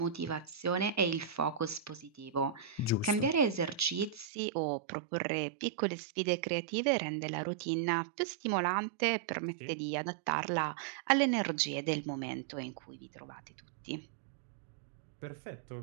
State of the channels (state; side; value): drops out; left; at 4.2 s